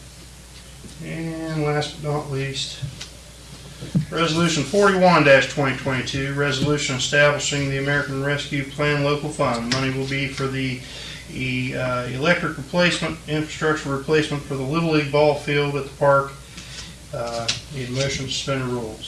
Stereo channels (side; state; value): both; identical; correlation 1.00